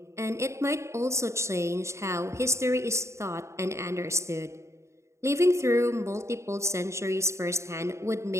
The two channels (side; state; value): left; late; 0.14 ms